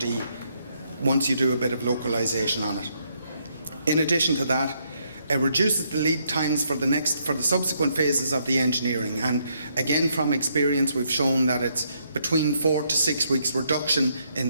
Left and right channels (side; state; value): both; inverted; correlation -0.74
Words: once you do a bit of localization on it. In addition to that, it reduces the lead times for the subsequent phases of the engineering, and again from experience we've shown that it's between 4 to 6 weeks reduction in